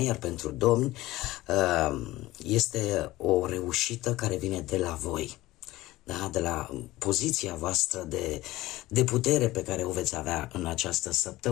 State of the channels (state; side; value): quieter; right; 17.8 dB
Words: iar pentru domni este o reușită care vine de la voi, da? De la poziția voastră de putere pe care o veți avea în această